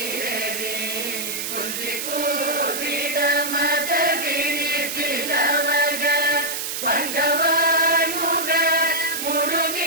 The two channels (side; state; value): right; noise; hiss, 4 dB below the sound